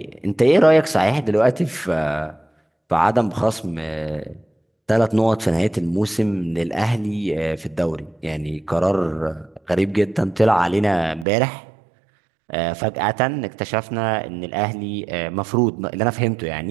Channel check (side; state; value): left; drops out; at 11.2 s